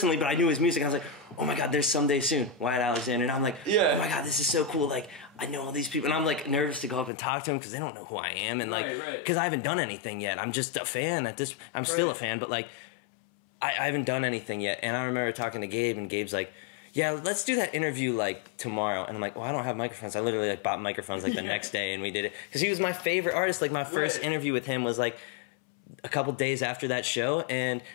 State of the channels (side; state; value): right; drops out; at 7.1 s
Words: but I knew his music. I was like, oh my god, there's Someday Soon, Wyatt Alexander, and I'm like, oh my god, this is so cool. Like, I know all these people, and I'm like nervous to go up and talk to them because they don't know who I am, and like, because I haven't done anything yet. I'm just a fan at this. I'm still a fan, but like, I haven't done anything yet. And I remember talking to Gabe, and Gabe's like, yeah, let's do that interview like tomorrow. And I'm like, well, I don't have microphones. I literally like bought microphones like the next day, and we did it because he was my favorite artist. Like my first interview with him was like a couple days after that show, and